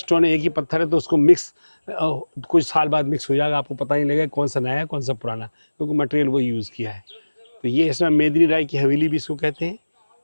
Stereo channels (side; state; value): both; inverted; correlation -1.00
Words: एक ही पत्थर है, तो उसको मिक्स कुछ साल बाद मिक्स हो जाएगा, आपको पता नहीं लगेगा कौन सा नया है कौन सा पुराना, क्योंकि मटेरियल वही यूज़ किया है। तो ये इसमें मेदिनी राय की हवेली भी इसको कहते हैं,